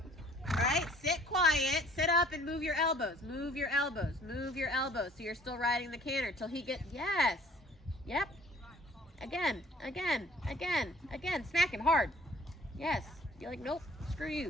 Right? Sit quiet, sit up and move your elbows. Move your elbows, move your elbows. So you're still riding the canter till he gets, yes. Yep. Again, again, again, again. Smack him hard. Yes. You're like, nope, screw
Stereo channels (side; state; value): both; normal; correlation 0.55